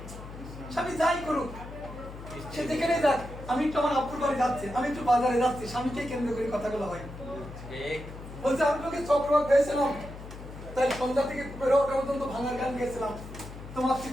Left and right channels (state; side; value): noise; left; hum, 13 dB below the sound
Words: স্বামী যাই করুক, সে যেখানে যাক, আমি একটু আমার আপুর বাড়ি যাচ্ছি, আমি একটু বাজারে যাচ্ছি, স্বামীকে কেন্দ্র করে কথাগুলো হয়। বলছে আমি তোকে চক্রবাক ভেবেছিলাম, তাই সন্ধ্যা থেকে বেরো ওটা পর্যন্ত ভাঙার গান গেছিলাম। তোমার